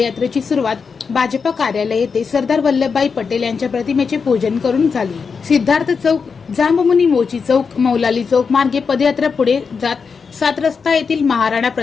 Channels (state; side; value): quieter; right; 5.5 dB